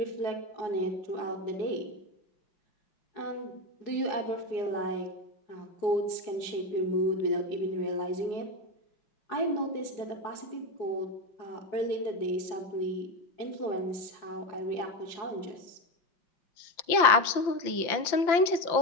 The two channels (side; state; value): right; late; 5.8 ms